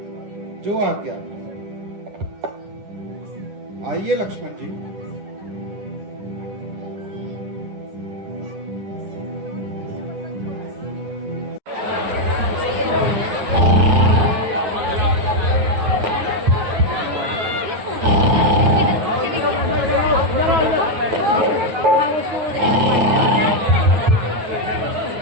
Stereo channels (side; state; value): left; late; 9.2 ms